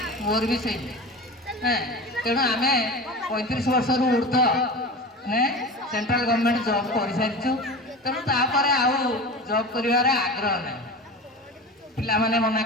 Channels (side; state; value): both; normal; correlation 0.31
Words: मोर भी से तेणु आम 35 वर्ष ऊर्ध ने सेंट्रल गवर्नमेंट जॉब कर सारी तेणु तापर आउ जॉब कर आग्रह ना पिला माने मना